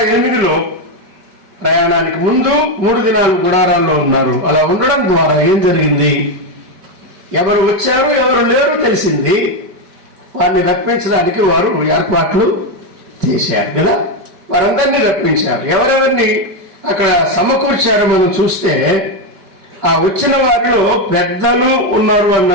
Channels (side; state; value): left; late; 5.1 ms